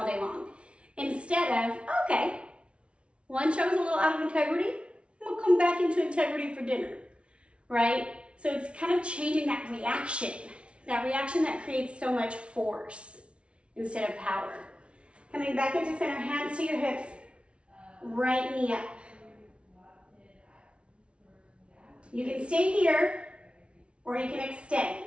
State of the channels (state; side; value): late; left; 0.060 ms